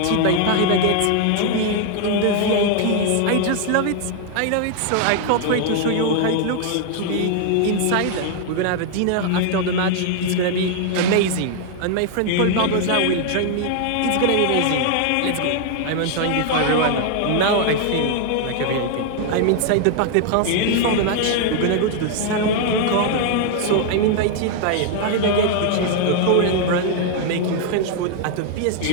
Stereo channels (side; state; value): both; different; correlation 0.00